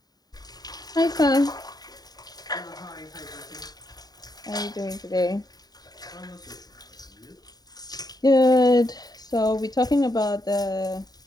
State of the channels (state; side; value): late; right; 0.19 ms